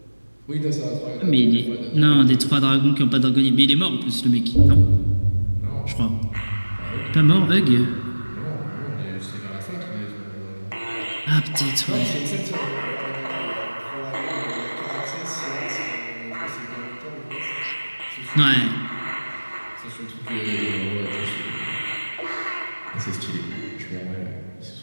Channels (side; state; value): both; inverted; correlation -1.00